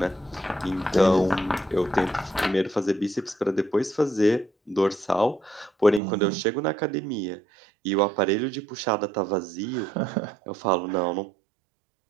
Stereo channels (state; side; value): drops out; left; at 6.0 s